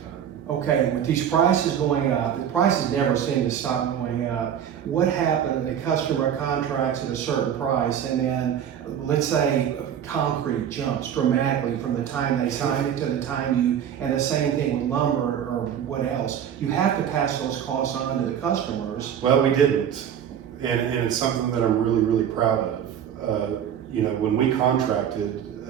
time. Okay, with these prices going up, the prices never seem to stop going up. What happened? The customer contracts at a certain price, and then let's say concrete jumps dramatically from the time they sign it to the time and the same thing with lumber or what else. You have to pass those costs on to the customers. Well, we didn't, and it's something that I'm really, really proud of. You know, when we contracted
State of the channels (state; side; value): quieter; left; 9.2 dB